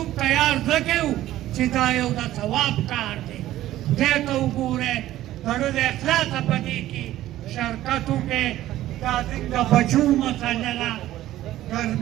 تیار ځکه یو چې دا یو د ثواب کار دی خدای ته وګورئ زړه د اخلاصه په دې کې شرکت وکړئ دا زموږ د بچو مسله ده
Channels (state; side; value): quieter; left; 14.3 dB